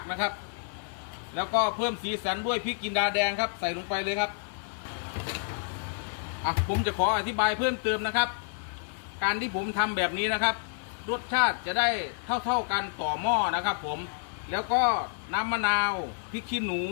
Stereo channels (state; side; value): silent; right; digital silence